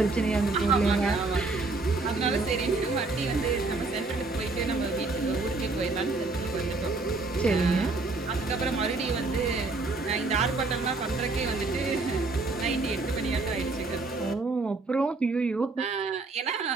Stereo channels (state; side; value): quieter; left; 3.5 dB